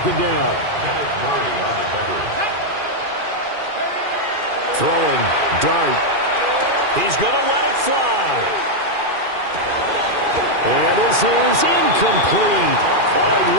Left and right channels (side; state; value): left; late; 2.4 ms